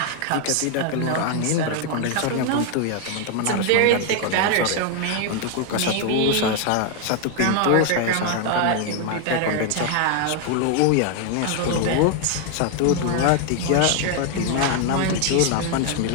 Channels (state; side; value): different; both; correlation 0.00